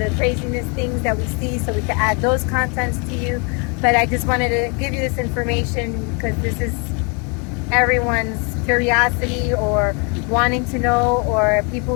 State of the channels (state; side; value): quieter; right; 34.1 dB